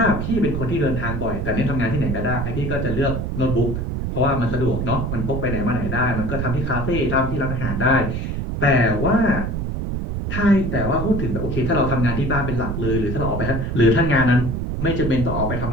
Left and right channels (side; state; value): right; noise; rumble, 3 dB below the sound